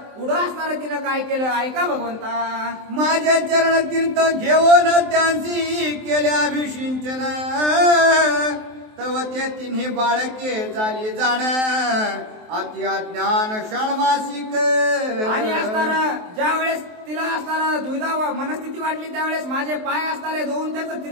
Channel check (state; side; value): late; left; 23 ms